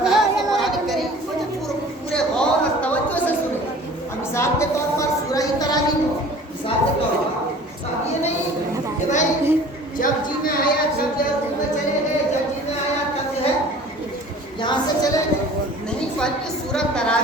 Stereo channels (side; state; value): both; normal; correlation 0.46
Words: کہ قرآن کریم کو جو پورے غور اور توجہ سے سنیں، مثال کے طور پر سورہ تراویح کو مثال کے طور پر، یہ نہیں کہ بھائی جب جی میں آیا جب جو ہے رکوع میں چلے گئے، جب جی میں آیا تب جو ہے یہاں سے چلے گئے، نہیں، بلکہ سورہ